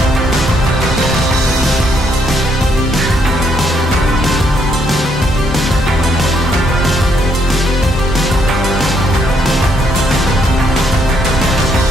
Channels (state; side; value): normal; both; correlation 0.72